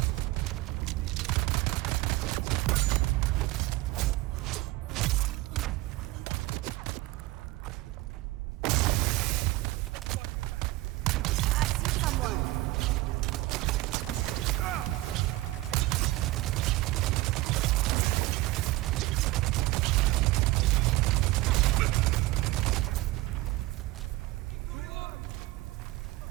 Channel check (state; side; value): quieter; left; 18.8 dB